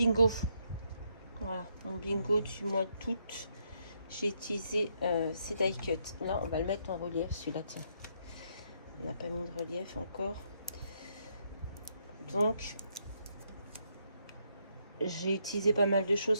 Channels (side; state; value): both; inverted; correlation -0.75